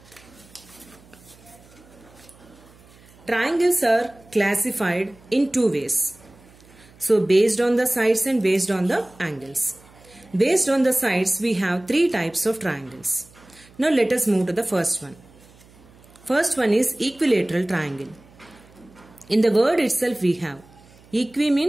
Triangles are classified in two ways. So based on the sides and based on the angles. Based on the sides we have three types of triangles. Now let us move to the first one. First one is equilateral triangle. In the word itself we have equi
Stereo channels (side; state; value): right; noise; hum, 26 dB below the sound